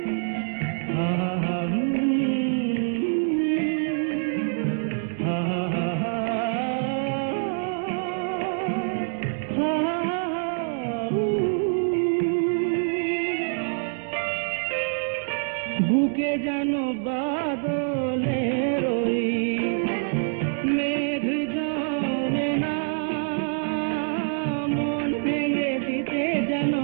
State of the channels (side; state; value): left; silent; digital silence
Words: বুকে যেন বাদলের ওই মেঘ জমে না মন ভেঙে দিতে যেন